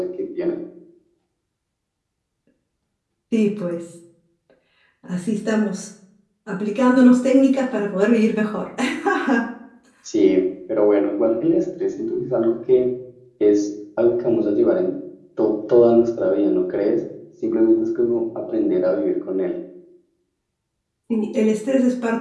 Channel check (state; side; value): identical; both; correlation 1.00